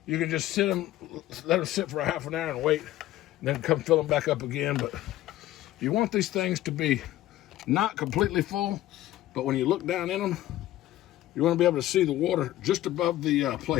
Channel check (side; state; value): right; quieter; 14.7 dB